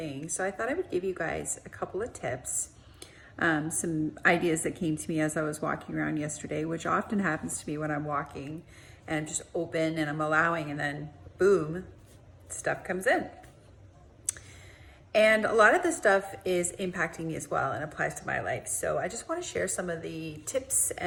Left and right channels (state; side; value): identical; both; correlation 1.00